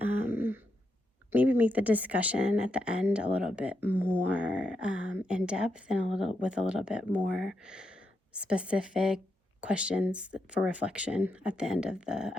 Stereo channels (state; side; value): normal; both; correlation 0.83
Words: maybe make the discussion at the end a little bit more in depth and with a little bit more specific questions for reflection at the end of the